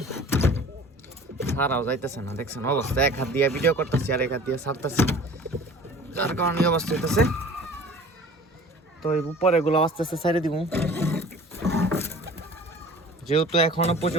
ছাড়াও যাইতেছে না। দেখছেন অবস্থা, এক হাত দিয়ে ভিডিও করতেছি আর এক হাত দিয়ে ছাড়তেছি, যার কারণে এই অবস্থা হইতেছে। তো এই উপরে এগুলো আস্তে আস্তে ছেড়ে দিব, যেহেতু এখনো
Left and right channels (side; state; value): both; normal; correlation 0.45